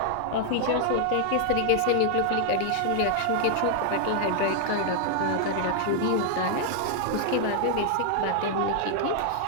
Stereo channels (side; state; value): both; different; correlation 0.00